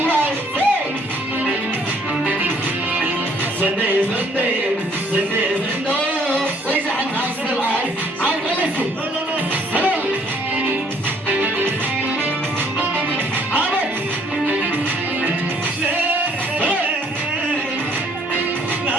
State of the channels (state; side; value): normal; both; correlation 0.62